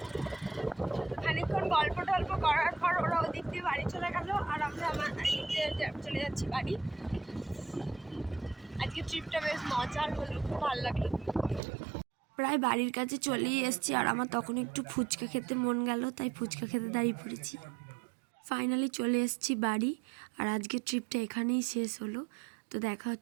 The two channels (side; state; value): left; drops out; at 11.6 s